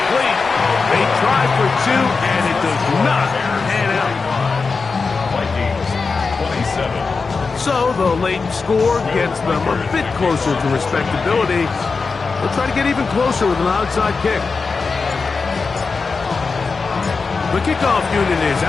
They try for 2, and it does not pan out. Vikings, 27. So the late score gets them a bit closer to respectability. They'll try to get even closer with an outside kick. The kickoff unit is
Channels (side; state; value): right; quieter; 4.6 dB